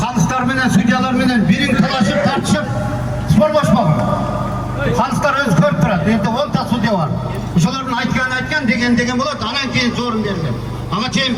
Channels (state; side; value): identical; both; correlation 1.00